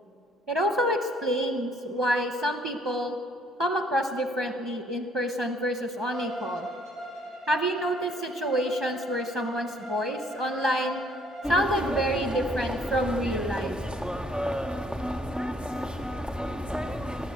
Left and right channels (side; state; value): both; normal; correlation 0.63